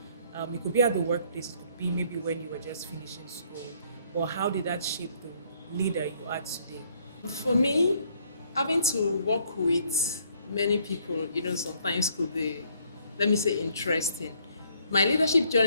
It could be at the workplace, it could be maybe when you were just finishing school. Or how did that shape the leader you are today? For me, having to work with many people, sometimes could be, let me say, interesting. My leadership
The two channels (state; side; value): inverted; both; correlation -0.65